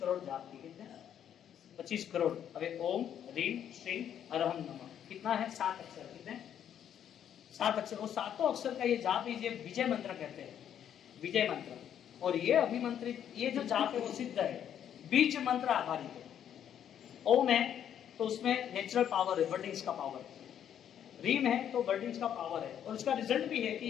करोड़ जाप की। कितने? 25 करोड़। अबे ओम ह्रीम श्रीम हरहम नमः कितना है? 7 अक्षर। कितने? 7 अक्षर। और सातों अक्षर का ये जाप ही विजय मंत्र कहते हैं, विजय मंत्र। और ये अभिमंत्रित ये जो जाप है वो सिद्ध है, बीज मंत्र आधारित है। ओम है तो उसमें नेचुरल पावर है, वर्डिंग्स का पावर। रीम है तो वर्डिंग्स का पावर है, और उसका रिजल्ट भी है कि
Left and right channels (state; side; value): quieter; right; 9.6 dB